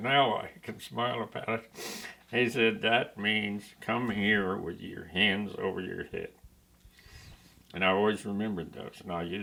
now I can smile about it. He said, that means come here with your hands over your head. And I always remembered those, and I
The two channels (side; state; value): both; identical; correlation 1.00